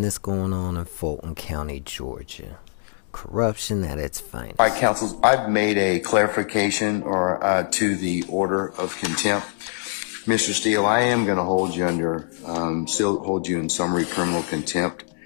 going on in Fulton County, Georgia. Corruption at its finest. All right, counsel, I've made a clarification to the order of contempt. Mr. Steele, I am going to hold you still hold you in summary criminal contempt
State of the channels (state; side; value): silent; right; digital silence